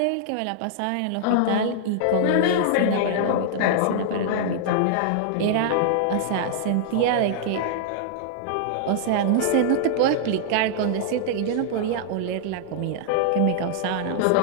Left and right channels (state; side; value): different; both; correlation -0.01